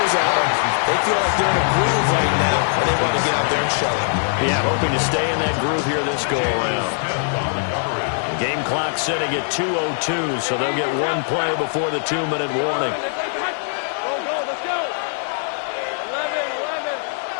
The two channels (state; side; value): silent; right; digital silence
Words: at them. They feel like they're in a groove right now, and they want to get out there and show it. Yeah, hoping to stay in that groove here this go-around. Game clock sitting at 2:02, so they'll get one play before the 2-minute warning.